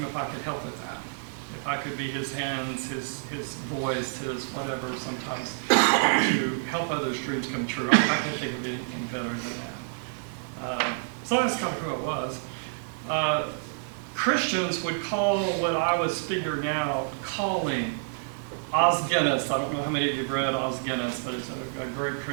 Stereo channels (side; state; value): left; silent; digital silence